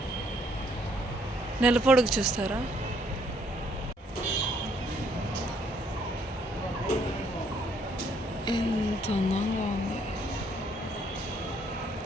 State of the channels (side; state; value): both; normal; correlation 0.67